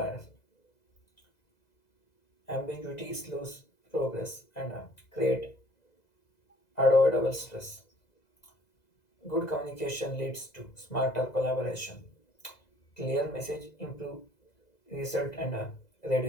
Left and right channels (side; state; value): right; late; 2.0 ms